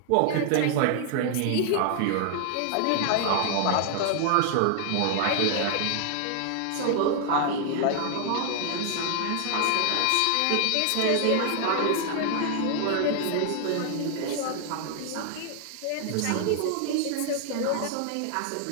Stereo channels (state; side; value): different; both; correlation 0.00